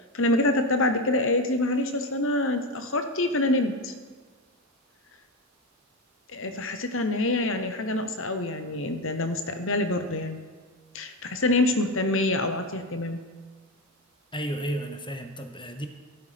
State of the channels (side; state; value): both; normal; correlation 0.16